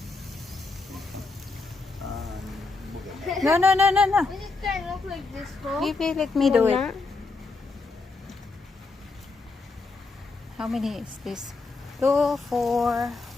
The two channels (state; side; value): quieter; right; 3.8 dB